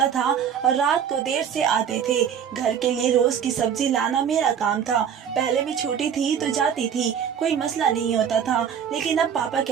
था और रात को देर से आते थे। घर के लिए रोज की सब्जी लाना मेरा काम था। पहले मैं छोटी थी तो जाती थी, कोई मसला नहीं होता था, लेकिन अब पापा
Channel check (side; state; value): left; quieter; 8.1 dB